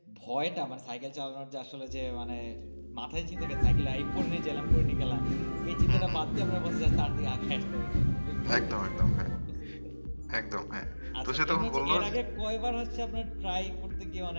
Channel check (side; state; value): both; inverted; correlation -1.00